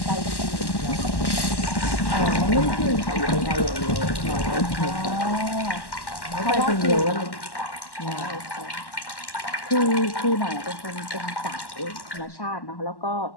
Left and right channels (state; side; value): late; right; 1.1 ms